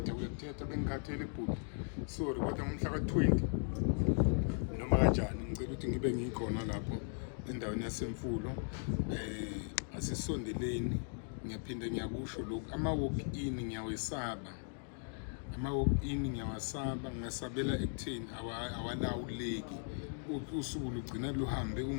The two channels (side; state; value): right; silent; 53 dB below the other